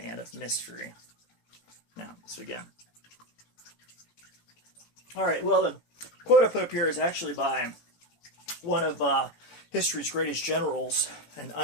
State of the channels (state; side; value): late; right; 18 ms